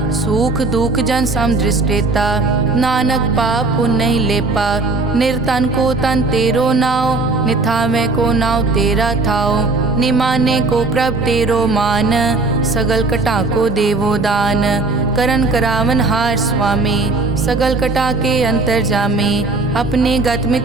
सुख दुख जन सम दृष्टेता, नानक पाप पुण्य नहीं लेपा। निर्तन को तन तेरो नाव, निथावे को नाव तेरा थाओ। निमाने को प्रभ तेरो मान, सगल कटा को देवो दान। करन करावन हार स्वामी, सगल कटा के अंतर जामे। अपने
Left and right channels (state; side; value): quieter; left; 3.4 dB